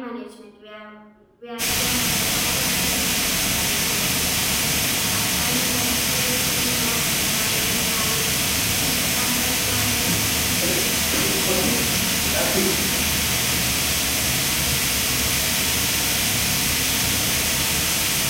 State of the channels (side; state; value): both; identical; correlation 1.00